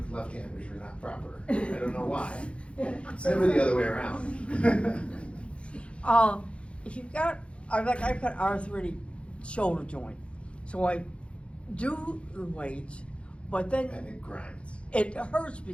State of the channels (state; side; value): late; right; 0.059 ms